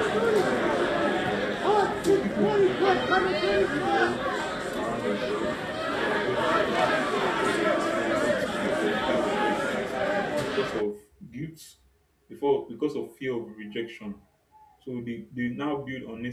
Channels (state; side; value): identical; both; correlation 1.00